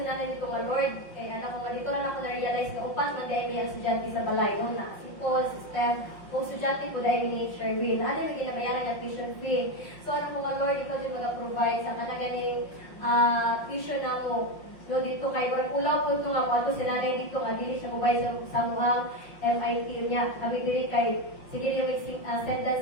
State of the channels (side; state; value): right; late; 5.6 ms